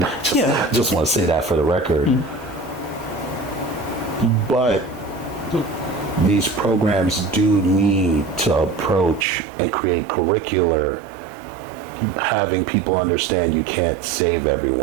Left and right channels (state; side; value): drops out; left; at 9.2 s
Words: Just want to say that for the record. But these programs do need to approach and create curricular, having people understand you can't save